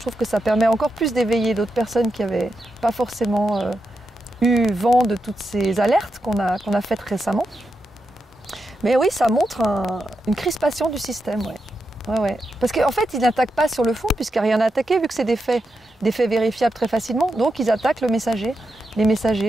trouve que ça permet encore plus d'éveiller d'autres personnes qui n'avaient pas forcément eu vent de toutes ces alertes qu'on a faites récemment. Mais oui, ça montre une crispation du système, ouais. Parce qu'en fait, ils n'attaquent pas sur le fond, puisqu'il n'y a rien à attaquer, vu que c'est des faits vérifiables très facilement. Donc, ils attaquent les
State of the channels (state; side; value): normal; both; correlation 0.86